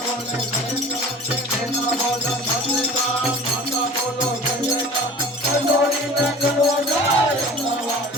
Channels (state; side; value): normal; both; correlation 0.42